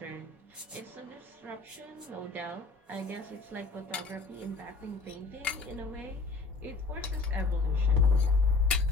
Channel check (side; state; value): right; quieter; 4.0 dB